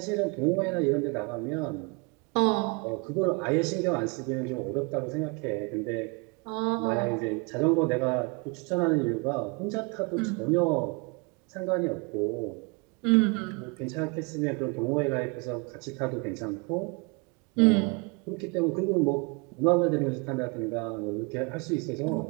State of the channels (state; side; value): quieter; left; 30.7 dB